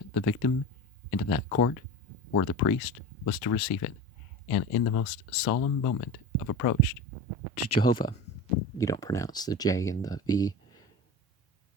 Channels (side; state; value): both; normal; correlation 0.30